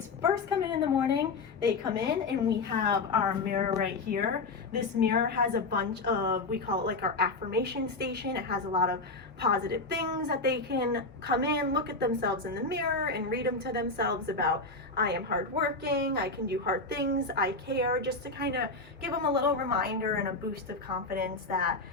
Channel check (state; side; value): quieter; right; 3.6 dB